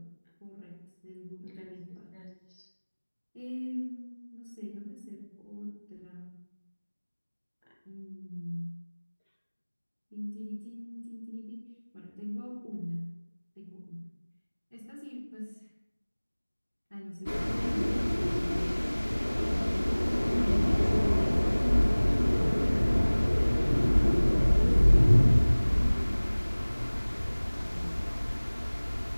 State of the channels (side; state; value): both; inverted; correlation -1.00